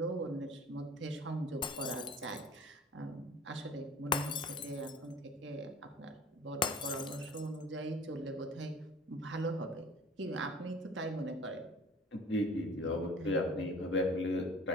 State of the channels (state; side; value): normal; both; correlation 0.45